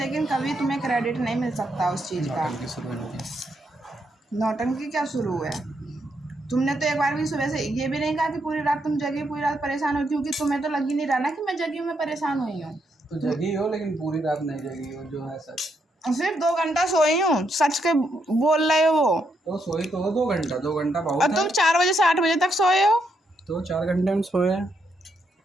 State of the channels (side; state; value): both; normal; correlation 0.78